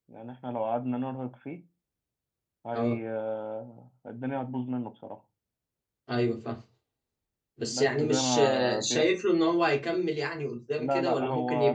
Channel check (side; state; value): both; identical; correlation 1.00